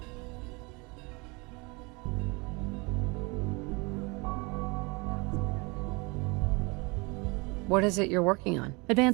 What is it you're working on?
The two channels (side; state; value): left; quieter; 27.8 dB